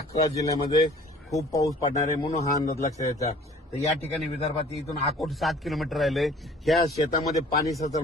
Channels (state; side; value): normal; both; correlation 0.51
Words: जिल्ह्यामध्ये खूप पाऊस पडणार आहे, म्हणून हा अंदाज लक्षात घ्यायचा. तर या ठिकाणी विदर्भात इथून अकोट 7 किलोमीटर राहिले. ह्या शेतामध्ये पाणी